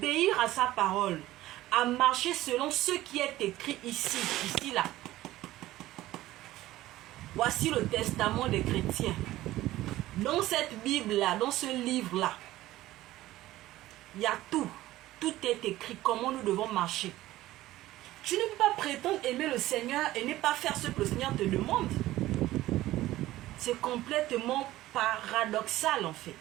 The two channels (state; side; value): quieter; left; 15.9 dB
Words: à sa parole, à marcher selon ce qui est écrit ici, là. Voici le testament des chrétiens. Dans cette Bible-là, dans ce livre-là, il y a tout. Tout est écrit, comment nous devons marcher. Tu ne peux pas prétendre aimer le Seigneur et ne pas faire ce que le Seigneur te demande. C'est complètement paradoxal en fait.